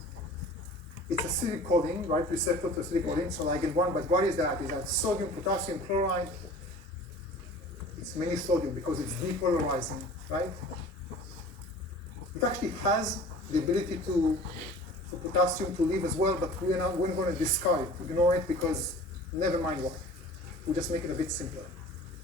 It's acetylcholine, right? Receptor to acetylcholine, so ligand 1, but what is that? Is that sodium, potassium, chloride? It's mainly sodium because it's depolarizing, right? It actually has the ability for potassium to leave as well, but we're going to discard it, ignore it, because never mind why. We'll just make it a bit simpler.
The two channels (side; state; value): both; normal; correlation 0.44